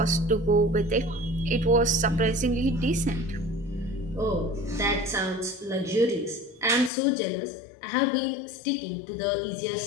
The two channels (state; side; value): drops out; right; at 6.9 s